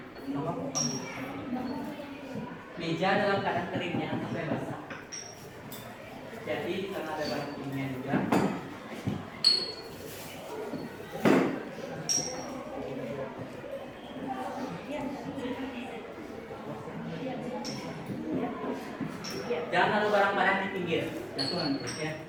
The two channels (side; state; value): right; noise; rumble, 30 dB below the sound